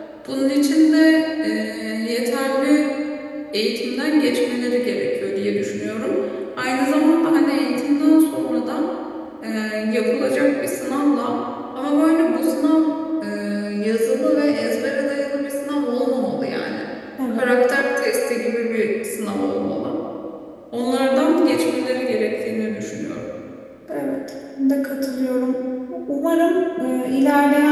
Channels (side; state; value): both; identical; correlation 1.00